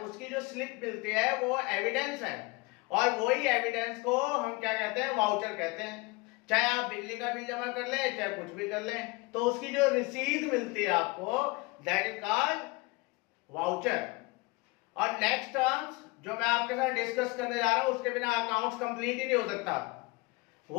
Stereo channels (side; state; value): right; quieter; 25.3 dB